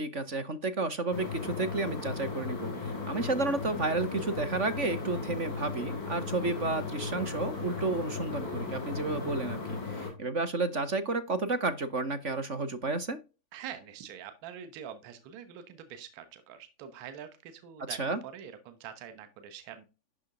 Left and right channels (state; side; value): late; left; 3.5 ms